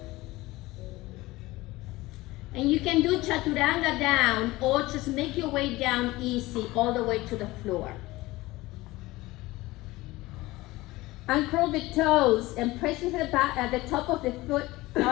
And you can do chaturanga down, or just make your way down easy all the way to the floor. Uncurl the toes and press with the back at the top of the foot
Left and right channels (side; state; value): right; quieter; 19.4 dB